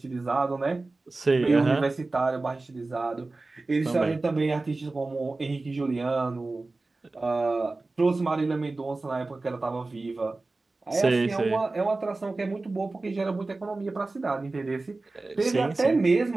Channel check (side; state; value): left; quieter; 3.3 dB